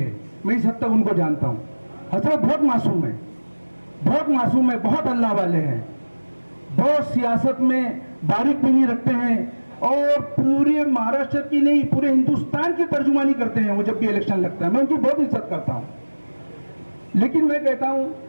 मैं इस हद तक उनको जानता हूं। हजरत बहुत मासूम है, बहुत मासूम है, बहुत अल्लाह वाले हैं, बहुत सियासत में बारीक बीनी रखते हैं और पूरे महाराष्ट्र की नहीं पूरे हिंदुस्तान की तर्जुमानी करते हैं वो जब भी इलेक्शन लगता है। मैं उनकी बहुत इज्जत करता हूं, लेकिन मैं कहता हूं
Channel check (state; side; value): inverted; both; correlation -1.00